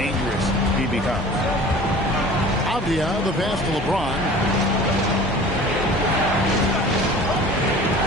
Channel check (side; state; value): both; normal; correlation 0.43